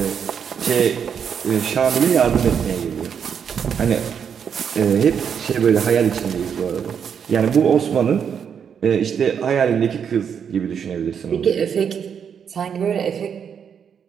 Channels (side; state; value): left; quieter; 7.5 dB